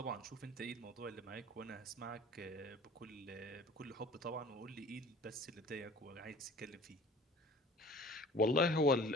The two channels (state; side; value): normal; both; correlation 0.45